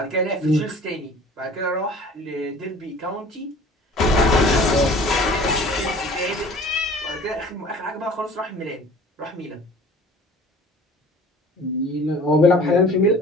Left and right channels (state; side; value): normal; both; correlation 0.47